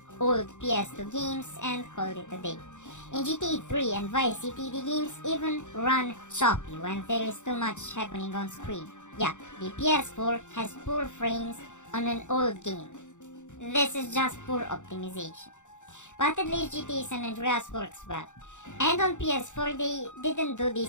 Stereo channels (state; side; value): late; right; 0.85 ms